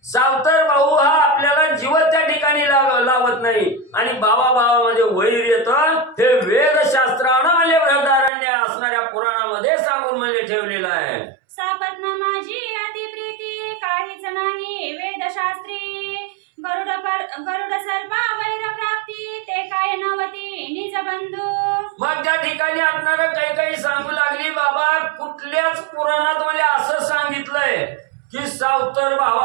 सावतर भाऊ हा आपल्याला जीवन त्या ठिकाणी लावत नाही आणि भावामध्ये वैर येतं. हे वेदशास्त्रानं म्हणजे बृहदारण्य असणाऱ्या पुराणामध्ये सांगून म्हणजे ठेवलेलं आहे. सापत्न माझी अतिप्रीती काहीच नाही वेदशास्त्री, गरुड सर्पा वैर प्राप्ती ते काय नवती निज बंधू. मग त्या ठिकाणी असणार काही सांगू लागली बाबा कुठल्याच पुराणात मला असं सांगितलंय की सावतर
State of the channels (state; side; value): drops out; left; at 8.3 s